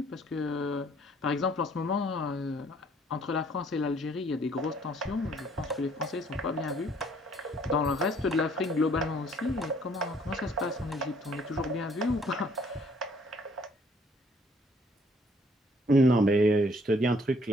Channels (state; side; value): normal; both; correlation 0.61